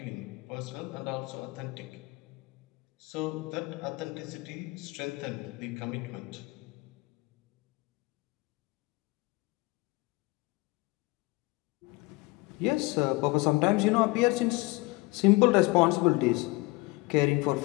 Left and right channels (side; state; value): right; quieter; 23.9 dB